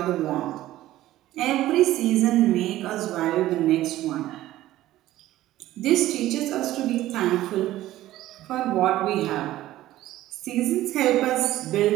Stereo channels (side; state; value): left; quieter; 14.9 dB